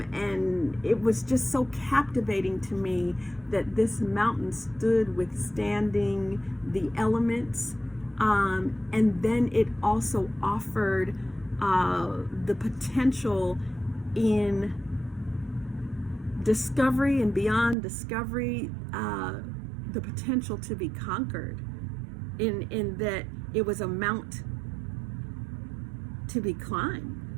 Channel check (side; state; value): left; drops out; at 17.8 s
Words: it was just so captivating to me that this mountain stood withstanding the elements. And then it also offered the potential in discovery and beyond discovery, the potential to be conquered, in that it was a mount to be climbed,